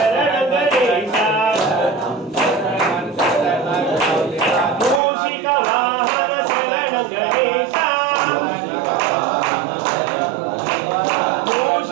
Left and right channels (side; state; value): left; drops out; at 5.0 s